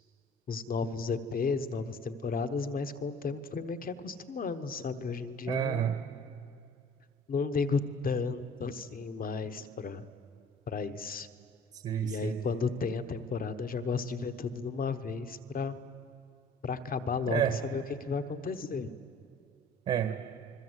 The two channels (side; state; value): both; normal; correlation 0.50